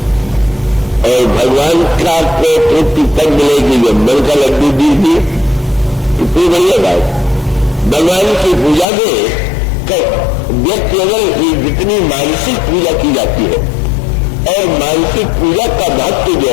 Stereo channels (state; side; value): drops out; right; at 8.8 s